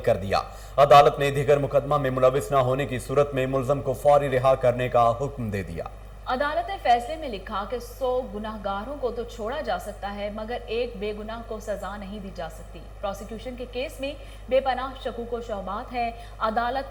दिया। अदालत ने दीगर मुकदमा में मुलविस न होने की सूरत में मुलजम को फौरी रिहा करने का हुक्म दे दिया। अदालत ने फैसले में लिखा कि 100 गुनाहगारों को तो छोड़ा जा सकता है मगर एक बेगुनाह को सजा नहीं दी जा सकती। प्रोसिक्यूशन के केस में बेपनाह शकूक व शुबहात है।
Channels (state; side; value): identical; both; correlation 1.00